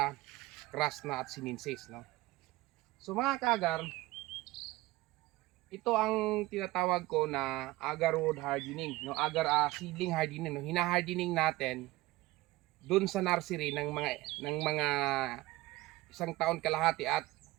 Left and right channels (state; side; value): quieter; left; 19.0 dB